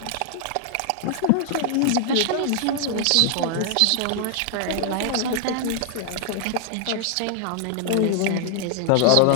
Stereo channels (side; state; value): both; different; correlation 0.00